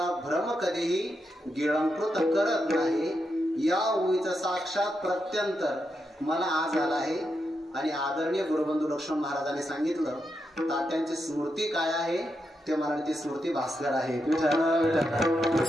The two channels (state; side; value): normal; both; correlation 0.84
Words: भ्रम कधीही गिळंकृत करत नाही. या ओवीचा साक्षात प्रत्यंतर मला आज आला आहे. आणि आदरणीय गुरुबंधू लक्ष्मण महाराजांनी सांगितलं तात्यांची स्मृती काय आहे ते मला ती स्मृती भास्कर आहे.